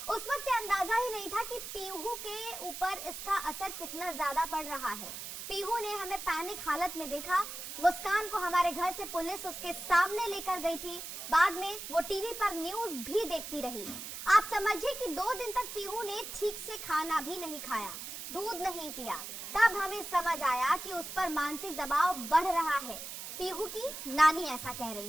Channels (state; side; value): noise; right; hiss, 8 dB below the sound